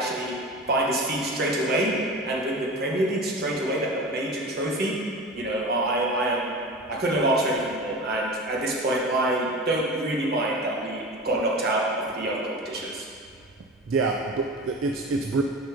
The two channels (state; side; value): normal; both; correlation 0.32